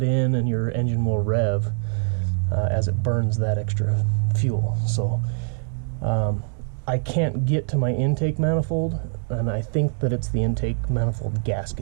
in and your engine will rev as it burns that extra fuel. So I can't get to my intake manifold, and I think that it's the intake manifold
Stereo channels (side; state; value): left; silent; digital silence